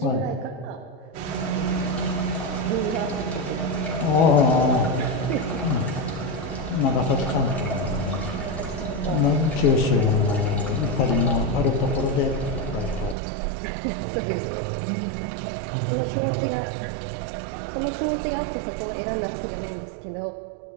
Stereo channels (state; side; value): drops out; left; at 13.2 s